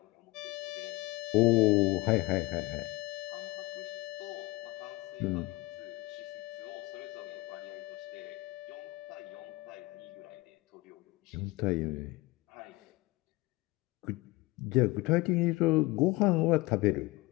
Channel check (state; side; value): quieter; right; 21.5 dB